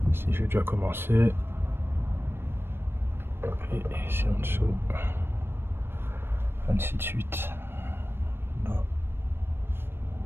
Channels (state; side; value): late; left; 0.11 ms